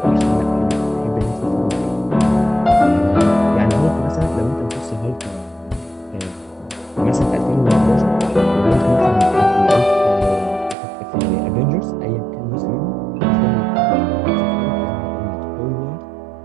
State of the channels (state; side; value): drops out; left; at 10.8 s